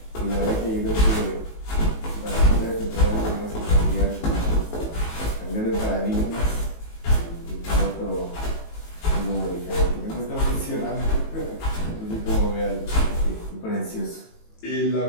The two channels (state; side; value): late; right; 18 ms